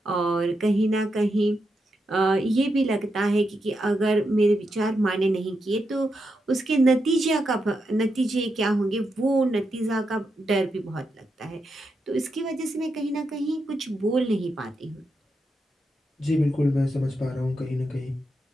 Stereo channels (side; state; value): both; normal; correlation 0.85